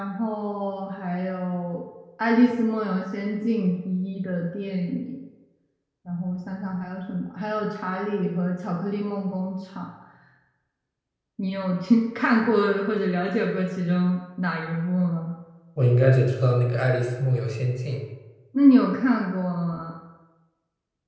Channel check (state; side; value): identical; both; correlation 1.00